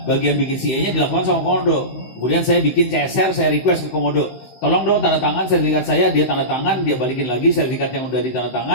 bagian bikin CA-nya dilakukan sama Komodo. Kemudian saya bikin CSR, saya request ke Komodo. Tolong dong tanda tangan sertifikat saya, dia tanda tangan, dia balikin lagi sertifikat yang udah ditanda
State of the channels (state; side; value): late; right; 16 ms